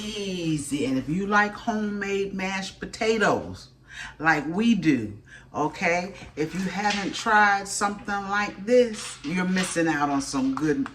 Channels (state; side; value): identical; both; correlation 1.00